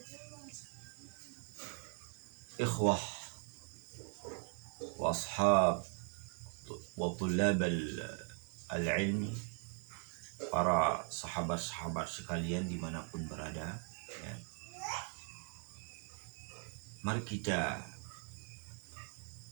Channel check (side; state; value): left; quieter; 38.7 dB